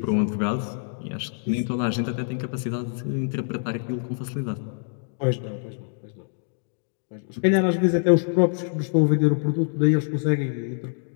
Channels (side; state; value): right; silent; digital silence